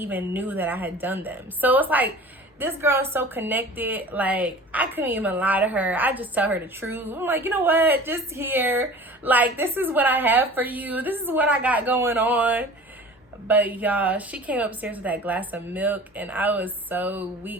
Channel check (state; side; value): normal; both; correlation 0.41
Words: knew that I had done them. So it's like, this girl is so connected. Like, I couldn't even lie to her. I just tell her the truth. I'm like, you know what? Just here. Like, this is what I have for you. This is what I got going on. But y'all, she came upstairs with that glass of milk, and I was so